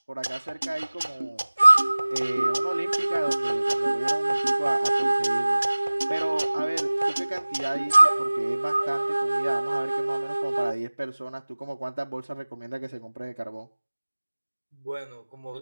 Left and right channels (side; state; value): both; inverted; correlation -1.00